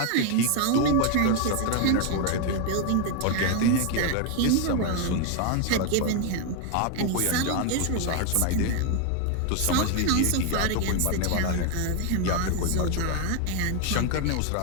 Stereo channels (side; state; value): both; different; correlation 0.01